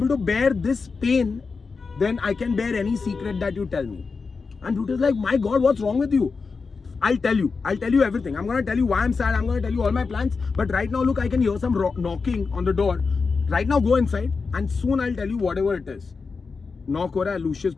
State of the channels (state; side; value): quieter; right; 4.7 dB